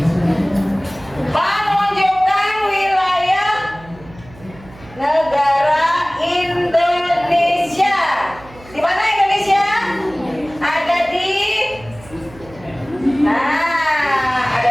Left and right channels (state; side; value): noise; right; hum, 21 dB below the sound